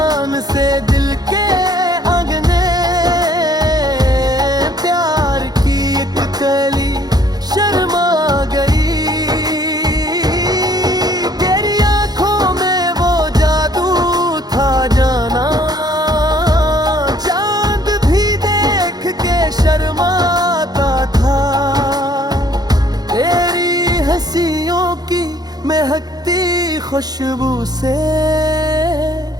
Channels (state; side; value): late; left; 0.19 ms